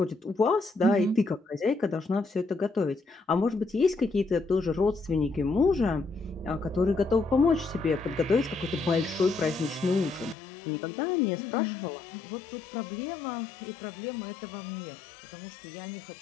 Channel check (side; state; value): right; drops out; at 10.4 s